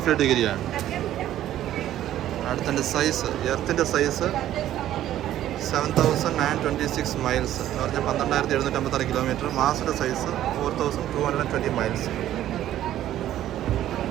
ഡിഗ്രിയാണ്. അടുത്തതിൻ്റെ സൈസ്, എർത്തിൻ്റെ സൈസ് 7,926 മൈൽസ് എന്ന് പറഞ്ഞാൽ 12,756 കിലോമീറ്റർ. മാസിൻ്റെ സൈസ് 4,220 മൈൽസ്.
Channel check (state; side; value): quieter; left; 12.6 dB